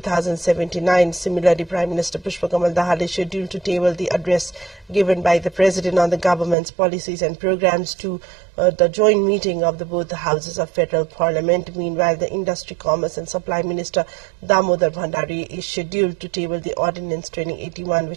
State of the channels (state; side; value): drops out; left; at 6.6 s